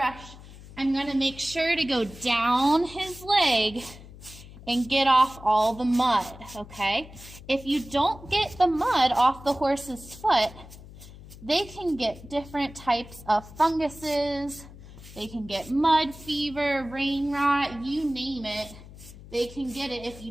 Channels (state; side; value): noise; left; hum, 17 dB below the sound